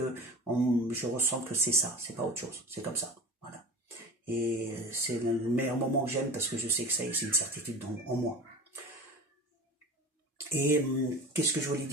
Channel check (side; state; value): both; normal; correlation 0.35